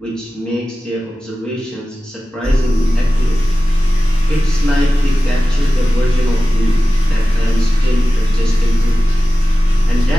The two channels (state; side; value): normal; both; correlation 0.95